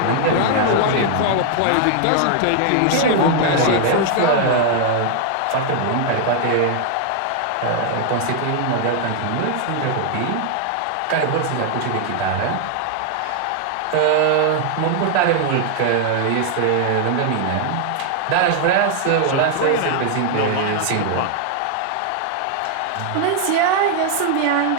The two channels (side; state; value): both; different; correlation 0.00